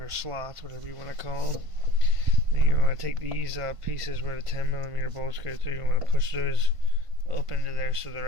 slots, whatever you want to call them. Then you want to take these pieces where the 10 millimeter bolts go through. You want to push those up into there so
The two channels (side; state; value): left; late; 1.5 ms